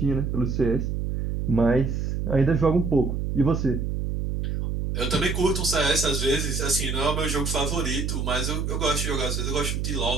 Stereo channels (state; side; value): noise; right; hum, 1 dB below the sound